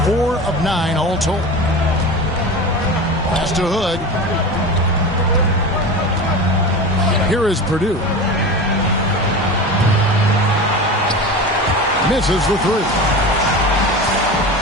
4 of 9 all told. Pass to Hood. Here is Purdue. Misses the 3.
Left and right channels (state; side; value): normal; both; correlation 0.29